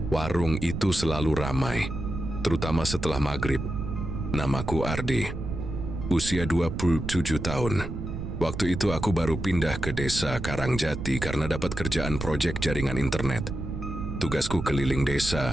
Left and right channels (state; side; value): noise; right; rumble, 6 dB below the sound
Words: warung itu selalu ramai, terutama setelah maghrib. Namaku Ardi, usia 27 tahun. Waktu itu aku baru pindah ke Desa Karangjati karena dapat kerjaan proyek jaringan internet. Tugasku keliling